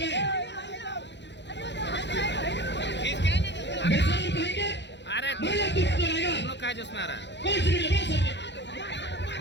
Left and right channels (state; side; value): late; right; 0.51 ms